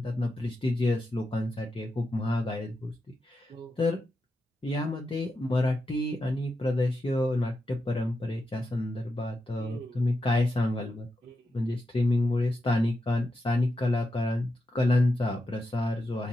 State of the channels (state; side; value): normal; both; correlation 0.87